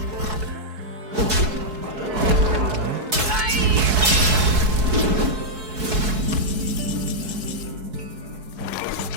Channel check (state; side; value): late; left; 4.7 ms